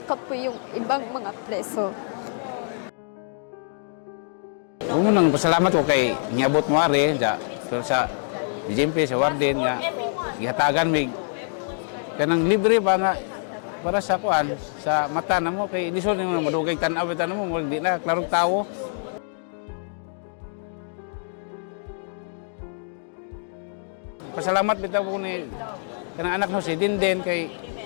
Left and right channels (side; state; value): right; silent; digital silence